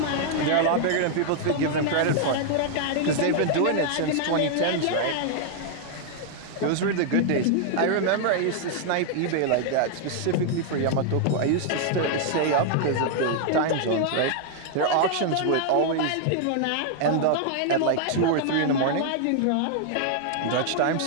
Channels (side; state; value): both; different; correlation 0.00